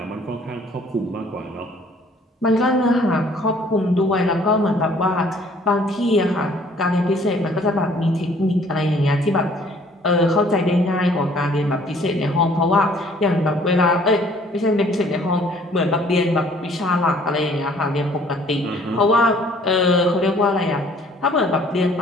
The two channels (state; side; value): normal; both; correlation 0.57